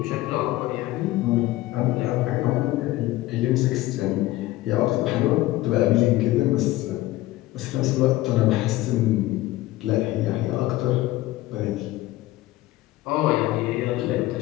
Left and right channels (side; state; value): right; quieter; 17.0 dB